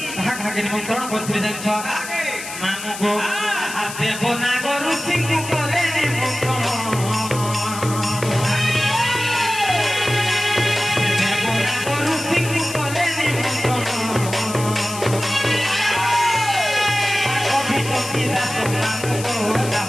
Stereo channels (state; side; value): noise; left; hiss, 10 dB below the sound